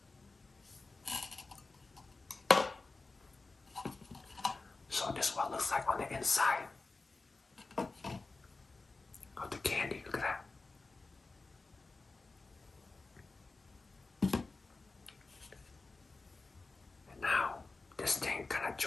So this is what it looks like on the inside of the candy. Look at that. I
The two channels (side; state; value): right; quieter; 3.6 dB